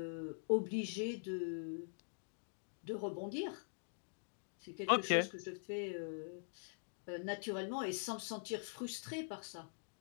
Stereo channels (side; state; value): right; silent; digital silence